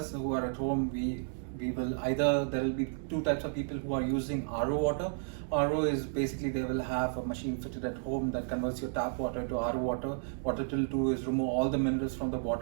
who are at home, we will either, there will be 2 types of people who are using RO water. RO is basically they will have a machine fitted at home that converts your tap water to RO water. What it will do is remove all the minerals from the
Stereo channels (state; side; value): silent; left; 56 dB below the other